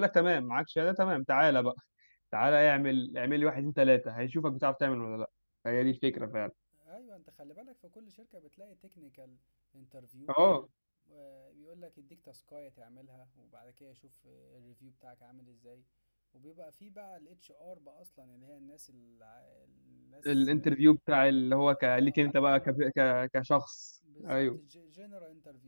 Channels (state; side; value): inverted; both; correlation -1.00